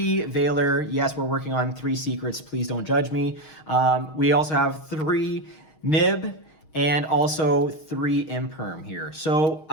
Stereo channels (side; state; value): right; late; 6.4 ms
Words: Veiler. Yes, we're working on 3 secrets. Please don't judge me. We also have 3 Nib and also 3 Imperm here. So